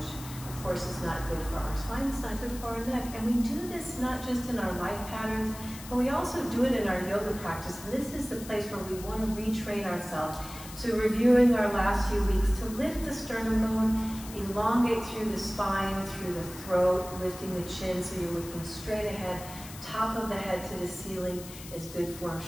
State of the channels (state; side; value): noise; left; hiss, 14 dB below the sound